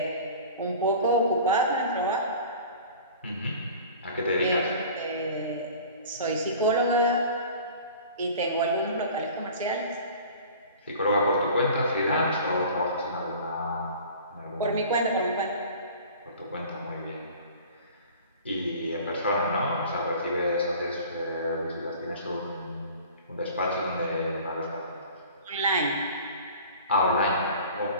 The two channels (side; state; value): both; inverted; correlation -0.43